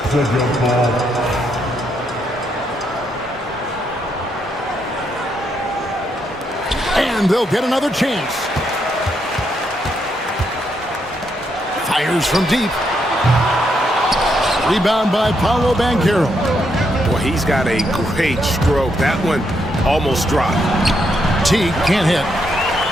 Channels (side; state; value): both; normal; correlation 0.78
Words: a jump ball. And they'll get another chance. Fires from deep. Rebound by Paolo Banchero. Well, he's got a great stroke. That one almost dropped. Teague can't hit.